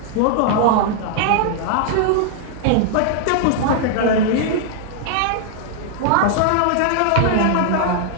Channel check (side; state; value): both; different; correlation -0.01